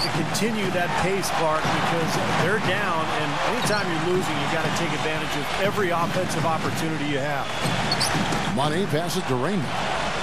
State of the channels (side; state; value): both; identical; correlation 1.00